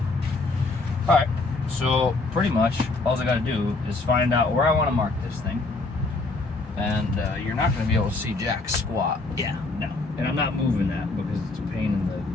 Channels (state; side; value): quieter; right; 3.4 dB